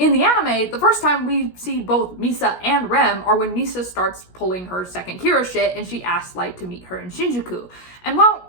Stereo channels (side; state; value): right; late; 17 ms